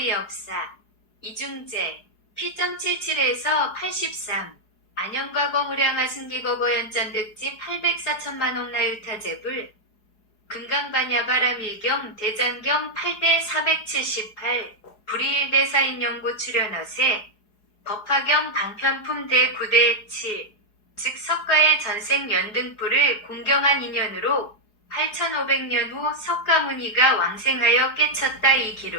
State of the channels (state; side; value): late; right; 4.8 ms